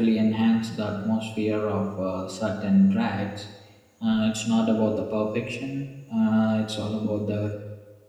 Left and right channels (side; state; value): both; identical; correlation 1.00